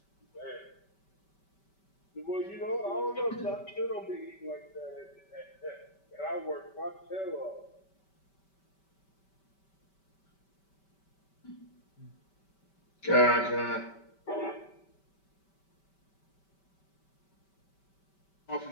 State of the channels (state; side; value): late; right; 5.2 ms